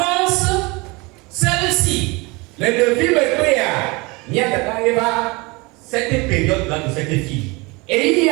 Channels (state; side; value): quieter; left; 25.8 dB